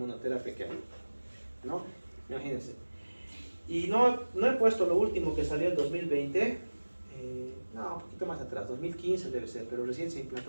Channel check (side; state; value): both; inverted; correlation -1.00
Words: que hay, ¿no? Imagínense. Y no he puesto lo último que salió en 2020, no, un poquito más atrás, 2015 debe ser, pero recién se